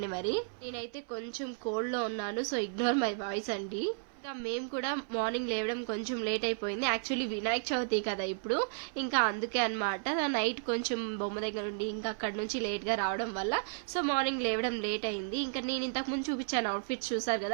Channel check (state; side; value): silent; left; 55 dB below the other